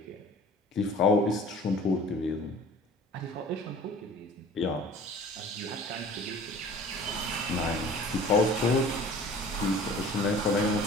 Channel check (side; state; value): both; normal; correlation 0.45